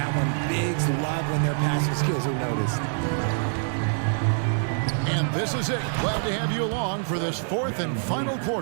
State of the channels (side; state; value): left; silent; digital silence